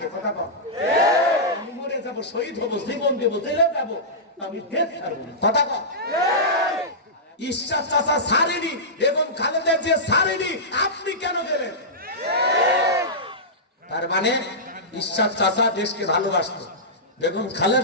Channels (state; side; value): normal; both; correlation -0.14